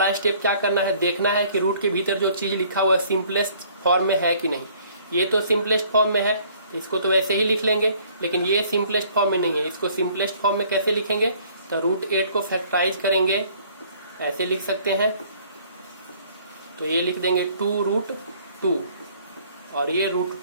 स्टेप क्या करना है, देखना है कि रूट के भीतर जो चीज लिखा हुआ है सिंपलेस्ट फॉर्म में है कि नहीं। ये तो सिंपलेस्ट फॉर्म में है, इसको तो वैसे ही लिख लेंगे, लेकिन ये सिंपलेस्ट फॉर्म में नहीं है। इसको सिंपलेस्ट फॉर्म में कैसे लिखेंगे, तो √8 को फैक्टराइज करेंगे, ऐसे लिख सकते हैं। तो ये लिख देंगे 2√2 और ये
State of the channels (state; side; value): inverted; both; correlation -0.58